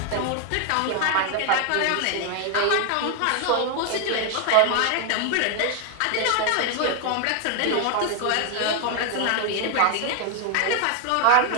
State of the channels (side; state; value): both; different; correlation 0.00